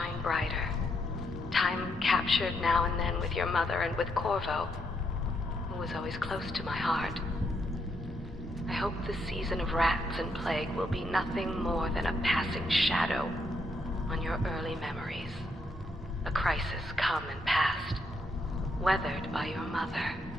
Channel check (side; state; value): both; normal; correlation 0.77